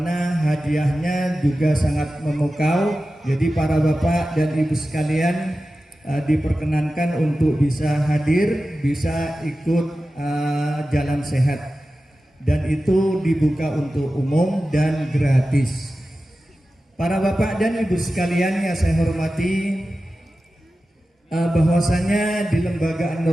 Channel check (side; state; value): both; normal; correlation 0.94